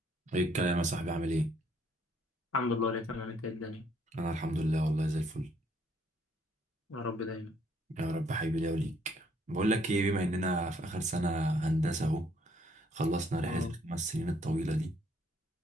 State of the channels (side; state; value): both; normal; correlation 0.66